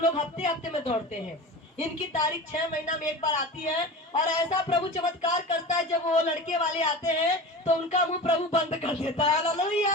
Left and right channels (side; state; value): both; normal; correlation 0.32